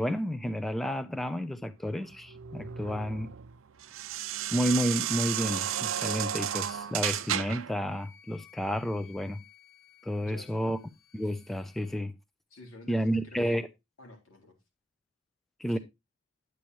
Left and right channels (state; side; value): normal; both; correlation 0.72